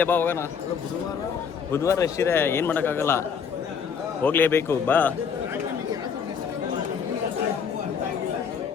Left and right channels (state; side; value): quieter; right; 6.7 dB